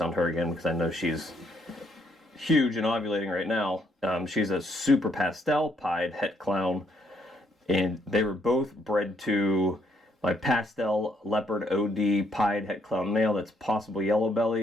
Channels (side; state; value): both; normal; correlation 0.71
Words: her again because I know she's huge and ovulating right now. She's a super pastel pied het clown, and they were both bred to my pastel leopard OD pied het clown male that's possible yellow